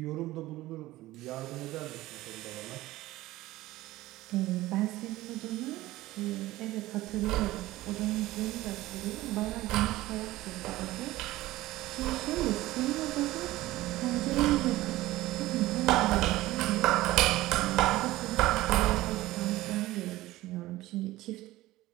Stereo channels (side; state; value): left; quieter; 17.3 dB